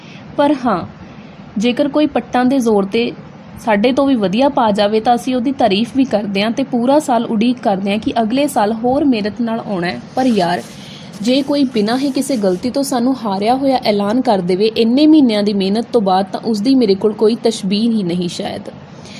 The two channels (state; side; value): identical; both; correlation 1.00